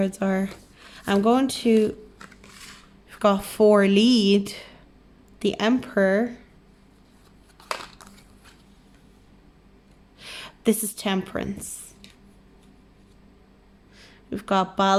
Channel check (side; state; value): both; identical; correlation 1.00